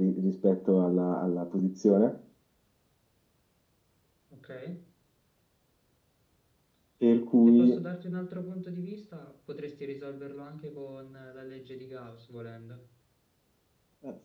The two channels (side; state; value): both; identical; correlation 1.00